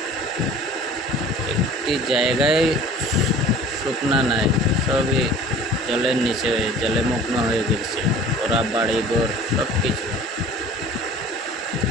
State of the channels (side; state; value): both; normal; correlation 0.46